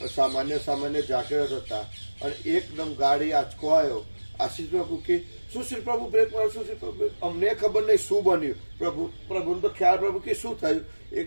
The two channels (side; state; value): both; inverted; correlation -1.00